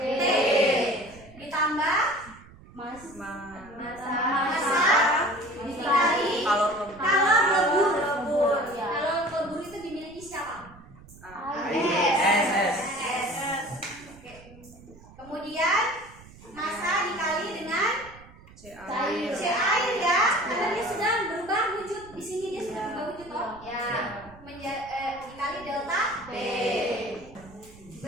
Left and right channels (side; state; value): right; noise; rumble, 21 dB below the sound